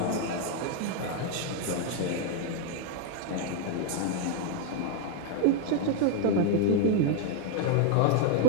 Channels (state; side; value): different; both; correlation 0.00